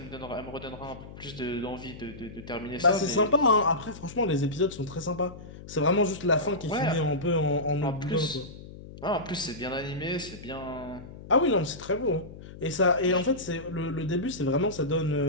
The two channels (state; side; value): noise; left; hum, 15 dB below the sound